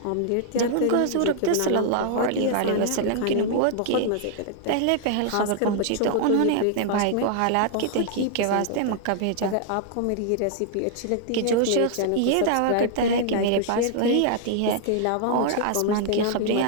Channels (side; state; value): both; different; correlation -0.01